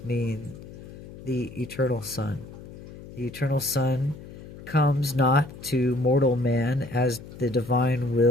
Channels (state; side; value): noise; left; hum, 15 dB below the sound